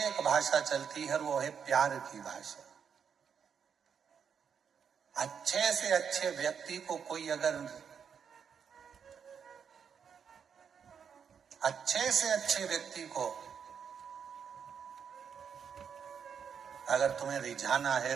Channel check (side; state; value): left; quieter; 7.2 dB